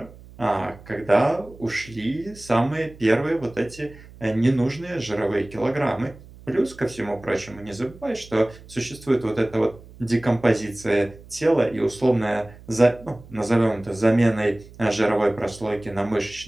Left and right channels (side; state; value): right; noise; hum, 20 dB below the sound